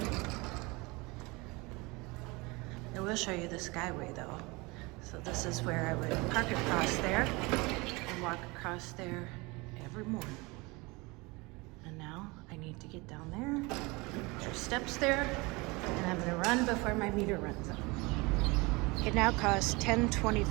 I will show you the Skyway though. So this is where I would park across there and walk across there every morning. And now I need to get down there. There's steps there, and I'm gonna run before my meter runs out. It now costs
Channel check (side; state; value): left; quieter; 25.1 dB